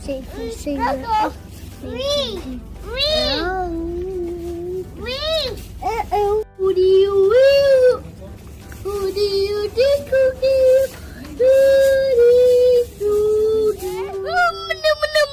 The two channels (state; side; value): identical; both; correlation 1.00